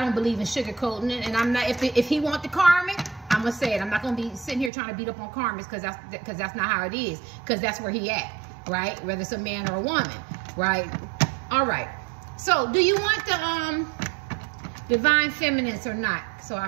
believe in sugarcoating it, and I'm not. If he want the karmic, I'm gonna say it. I'm not gonna be sitting here trying to beat up on karmics because that's not how it is. Because that's where he at, right? Whether it's a man or a woman, right? All right. So, do you want the divine feminines or not? So I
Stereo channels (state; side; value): drops out; left; at 4.7 s